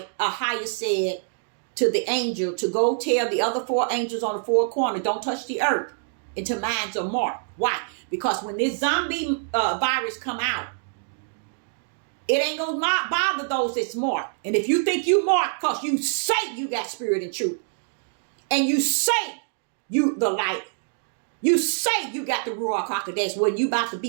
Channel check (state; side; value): silent; left; digital silence